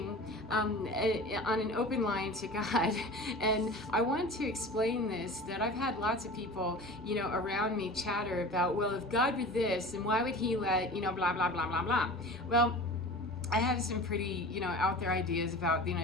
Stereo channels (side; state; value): both; normal; correlation 0.37